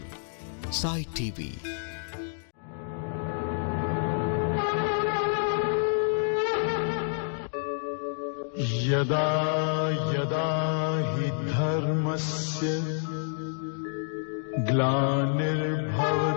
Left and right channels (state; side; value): silent; right; digital silence